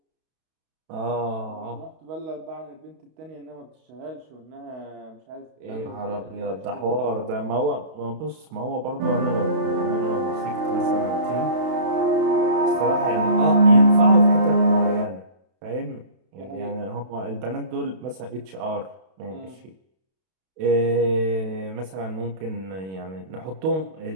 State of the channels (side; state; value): left; late; 32 ms